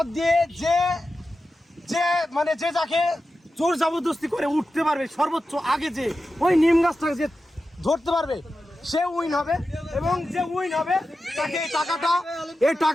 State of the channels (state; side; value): normal; both; correlation 0.92